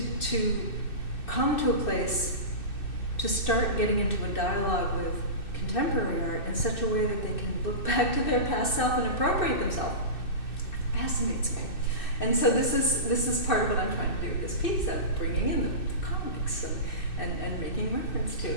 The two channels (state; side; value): late; right; 2.6 ms